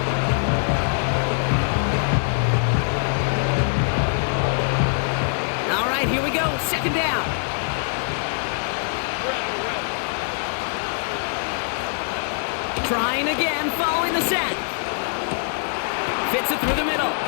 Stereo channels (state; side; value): silent; right; digital silence